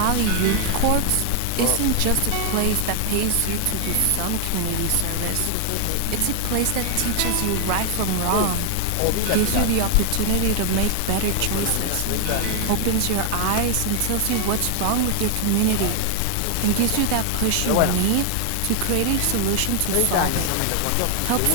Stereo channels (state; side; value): different; both; correlation 0.00